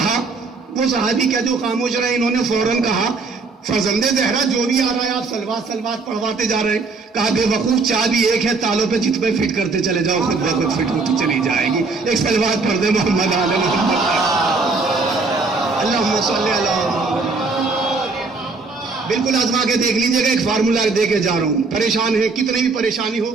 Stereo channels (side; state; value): left; quieter; 4.0 dB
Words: وہ صحابی کیا جو خاموش رہے، انہوں نے فوراً کہا فرزند زہرا جو بھی آ رہا ہے آپ صلوات پڑھواتے جا رہے ہیں۔ کہا بے وقوف چابی ایک ہے، تالوں پہ جت پہ فٹ کرتے چلے جاؤ، خود بخود فٹ ہوتی چلی جائے گی۔ ایک صلوات پڑھ دے محمد آل محمد، اللہم صلی علی محمد۔ بالکل آزما کے دیکھ لیجئے گا، ایک فارمولہ دے کے جا رہا ہوں، پریشان ہے کتنی بھی پریشانی ہو